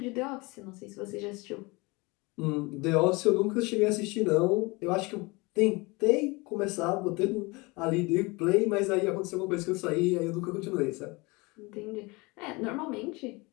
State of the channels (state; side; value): quieter; right; 25.5 dB